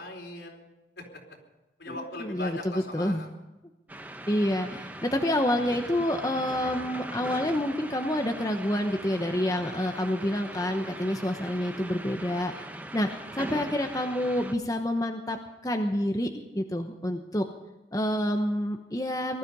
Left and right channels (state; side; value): normal; both; correlation 0.75